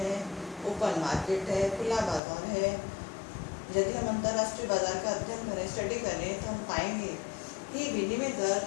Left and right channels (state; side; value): drops out; right; at 2.2 s